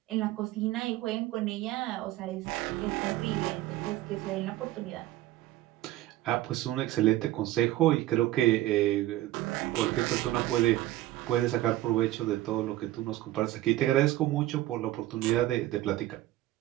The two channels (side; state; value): left; quieter; 15.7 dB